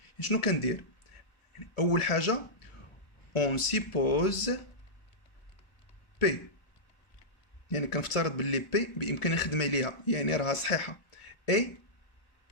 شنو كندير؟ أول حاجة on suppose P، يعني كنفترض باللي P بإمكاني نخدم عليها، يعني راها صحيحة. et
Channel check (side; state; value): right; late; 1.4 ms